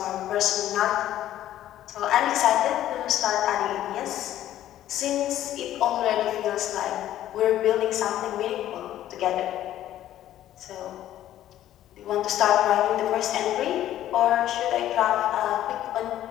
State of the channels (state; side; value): quieter; right; 12.6 dB